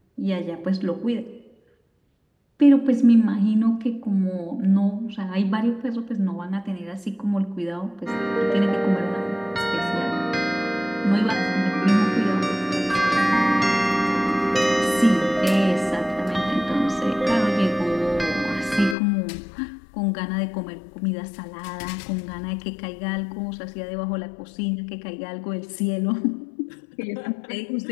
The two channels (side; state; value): right; drops out; at 18.9 s